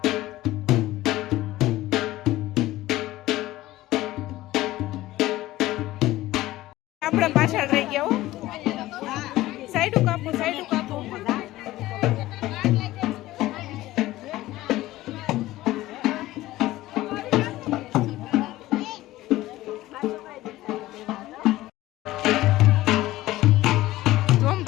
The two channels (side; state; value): right; quieter; 16.6 dB